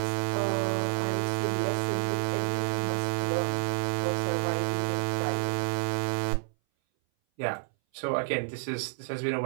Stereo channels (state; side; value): silent; left; 58 dB below the other